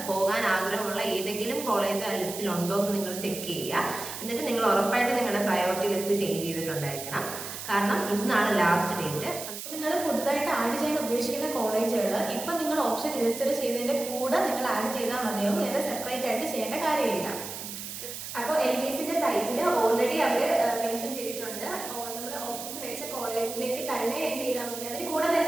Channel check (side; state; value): right; noise; hiss, 8 dB below the sound